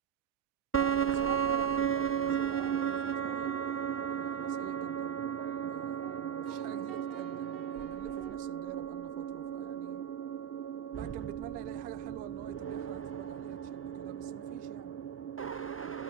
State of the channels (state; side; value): quieter; left; 8.2 dB